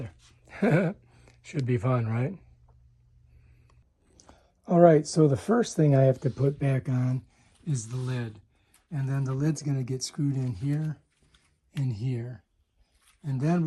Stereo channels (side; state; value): both; identical; correlation 1.00